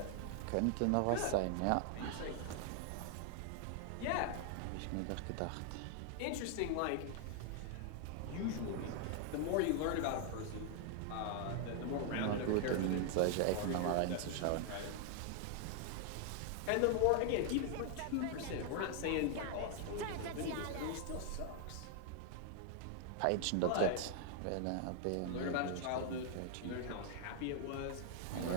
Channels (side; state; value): both; different; correlation 0.00